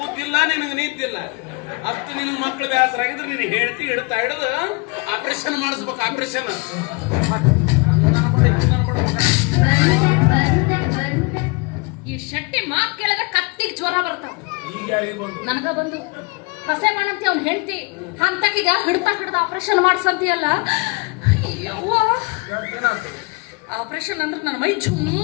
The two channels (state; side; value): quieter; right; 28.7 dB